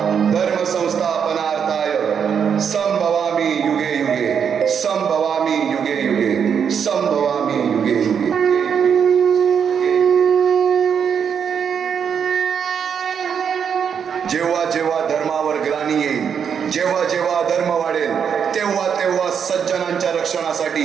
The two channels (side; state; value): left; quieter; 7.3 dB